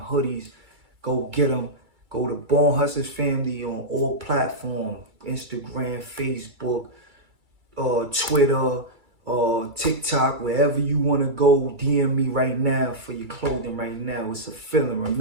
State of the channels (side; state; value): left; late; 2.3 ms